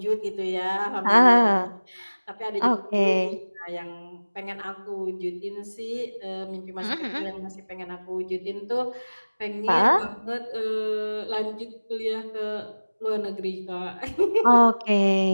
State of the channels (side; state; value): both; inverted; correlation -1.00